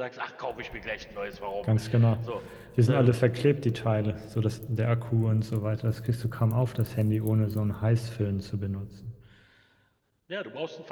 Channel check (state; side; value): identical; both; correlation 1.00